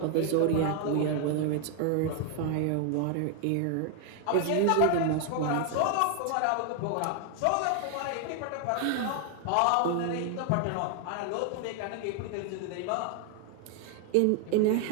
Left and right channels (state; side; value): different; both; correlation 0.00